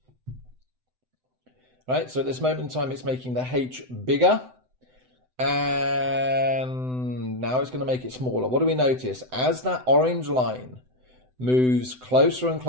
Right, so at this moment in time, it's making the h bigger, and now it's going to make it smaller. What do we notice? As that orange line moves closer and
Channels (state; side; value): late; left; 7.9 ms